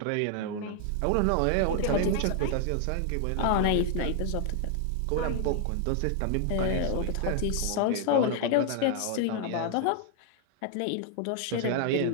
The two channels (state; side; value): different; both; correlation 0.00